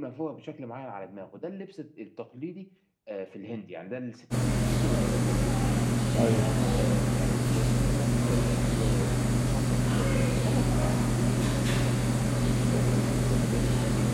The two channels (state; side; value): identical; both; correlation 1.00